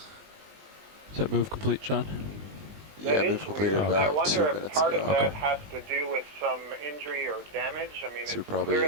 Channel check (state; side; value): late; left; 20 ms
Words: that move complete, John? Yeah, That we've is completed weird. about I 2 wonder if minutes part ago. of that has to do with some injury or damage. I mean, So it's probably-